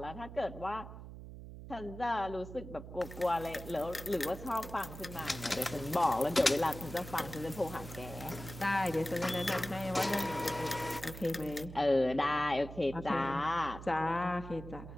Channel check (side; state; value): right; noise; hum, 12 dB below the sound